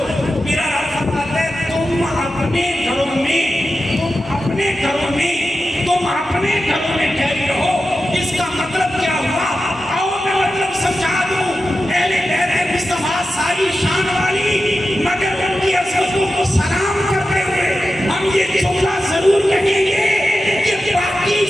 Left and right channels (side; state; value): both; normal; correlation 0.92